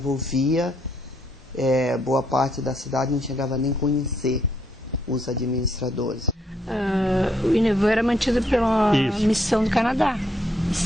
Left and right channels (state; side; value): normal; both; correlation 0.73